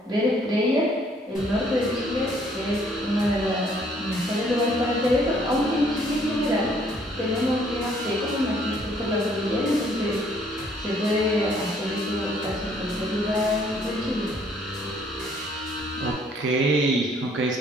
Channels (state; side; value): normal; both; correlation 0.63